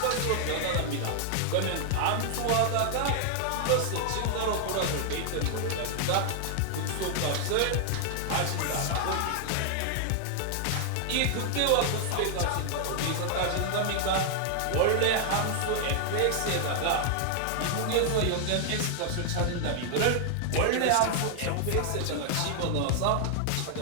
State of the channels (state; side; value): different; both; correlation 0.00